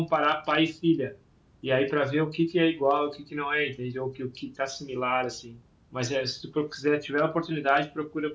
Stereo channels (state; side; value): identical; both; correlation 1.00